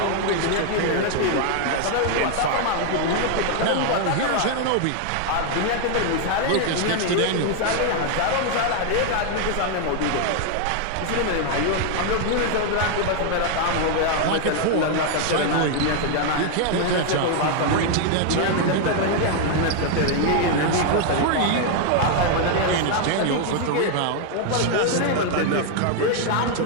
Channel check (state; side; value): different; both; correlation 0.00